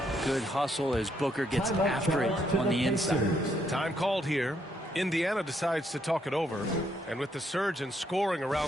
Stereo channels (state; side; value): normal; both; correlation 0.74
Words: Good hustle as Booker gets after it on the inside. Time called here. Indiana decides to talk it over. And with the surge in scoring